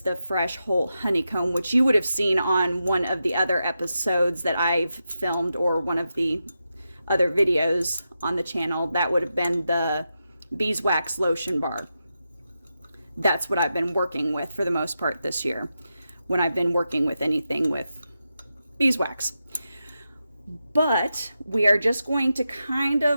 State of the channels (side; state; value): both; inverted; correlation -0.88